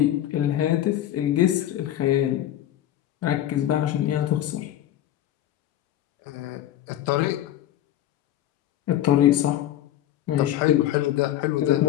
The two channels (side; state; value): right; quieter; 12.4 dB